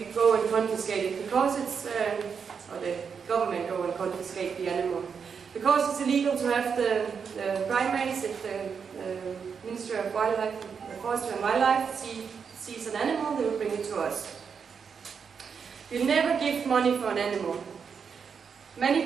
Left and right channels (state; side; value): quieter; left; 6.3 dB